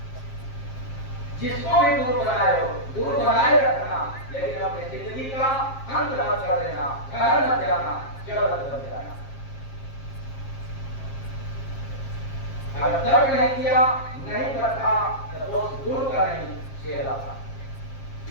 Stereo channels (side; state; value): right; late; 7.4 ms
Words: जिसको भी दूर बनाए हो दूर बनाए रखना, लेकिन अपनी जिंदगी का अंत मत कर देना, घर मत जाना, जड़ मत बन जाना। अगर तर्क नहीं किया, नहीं करता तो दोष दूर का नहीं शेर आता,